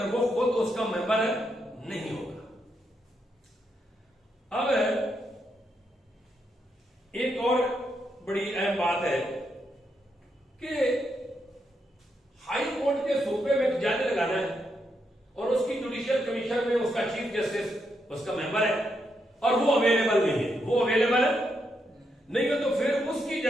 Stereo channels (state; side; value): normal; both; correlation 0.80